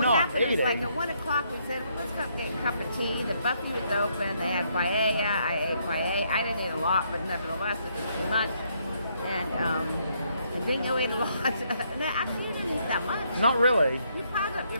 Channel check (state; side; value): inverted; both; correlation -0.73